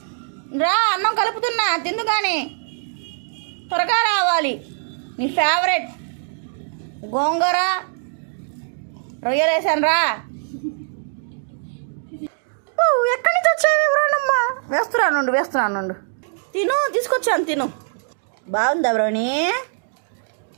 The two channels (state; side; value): silent; left; digital silence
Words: రా, అన్నం కలుపుతున్నా, తిందు కానీ త్వరగా రావాలి. నీ ఫేవరెట్ గోంగూర రొయ్యలు వేసాను రా. ఎక్కడి నుంచి వచ్చావు బ్రౌనమ్మా? వేస్తున్నాను. తిను, తీసుకొచ్చాను తిను. బాగుందా బ్రౌని?